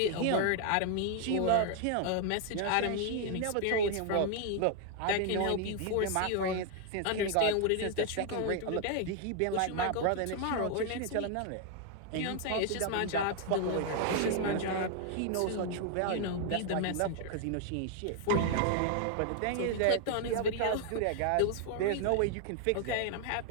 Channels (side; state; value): both; different; correlation 0.00